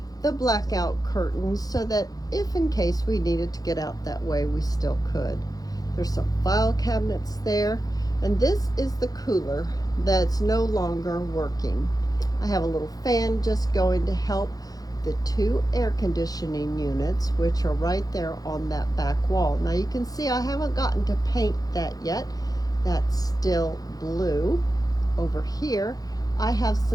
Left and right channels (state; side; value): late; right; 0.18 ms